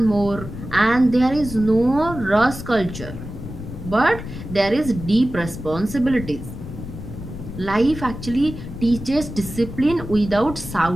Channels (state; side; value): noise; left; rumble, 10 dB below the sound